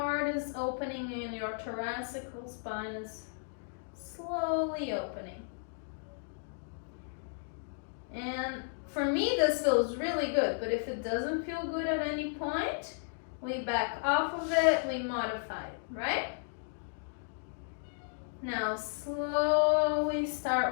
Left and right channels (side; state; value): right; silent; digital silence